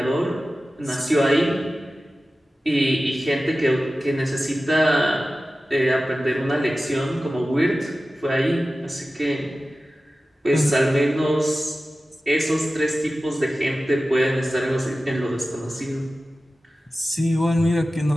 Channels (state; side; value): normal; both; correlation 0.95